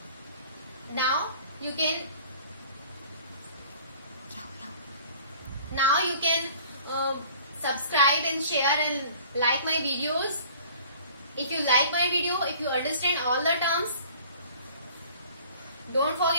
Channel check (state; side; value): inverted; both; correlation -0.50